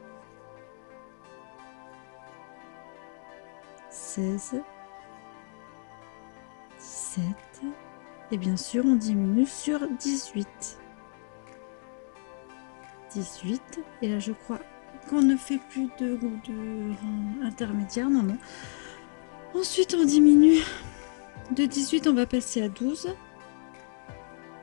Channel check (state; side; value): silent; right; 58 dB below the other